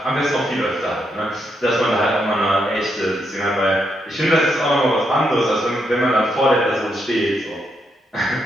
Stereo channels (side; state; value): both; normal; correlation 0.80